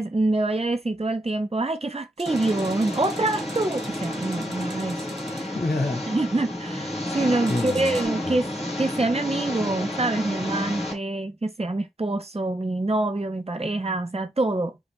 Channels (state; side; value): normal; both; correlation 0.80